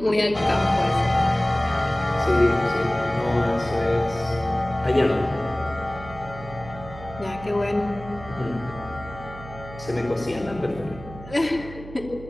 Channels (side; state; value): right; noise; hum, 15 dB below the sound